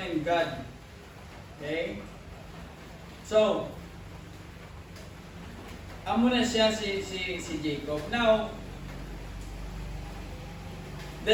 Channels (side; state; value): both; identical; correlation 1.00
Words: in God. Okay? So, amo na siya si Jacob. Now, the